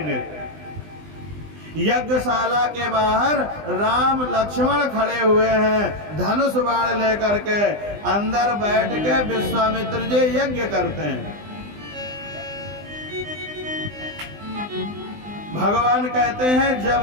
यज्ञशाला के बाहर राम लक्ष्मण खड़े हुए हैं, धनुष बाण लेकर के। अंदर बैठ के विश्वामित्र जी यज्ञ करते हैं। भगवान कहते हैं, जब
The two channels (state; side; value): late; left; 20 ms